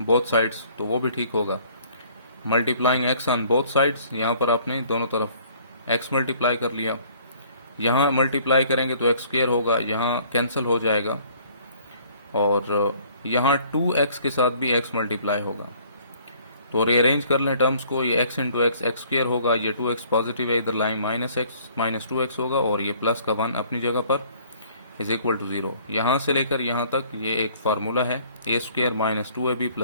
बोथ साइड्स, तो वो भी ठीक होगा। Multiplying x on both sides, यहाँ पर आपने दोनों तरफ x मल्टीप्लाई कर लिया। यहाँ मल्टीप्लाई करेंगे तो x स्क्वायर होगा, यहाँ कैंसिल हो जाएगा, और यहाँ 2x के साथ भी x मल्टीप्लाई होगा। तो रीअरेंज कर लें टर्म्स को, ये x into x x square होगा, ये 2x पॉजिटिव है, इधर लाइन -2x होगा, और ये प्लस का 1 अपनी जगह पर, इज इक्वल टू 0। यहाँ से लेकर यहाँ तक ये एक फार्मूला है, a square minus 2ab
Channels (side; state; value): both; inverted; correlation -0.58